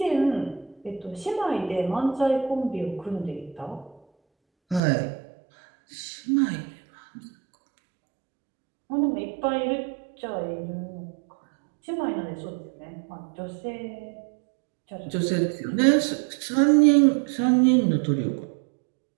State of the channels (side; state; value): left; drops out; at 4.8 s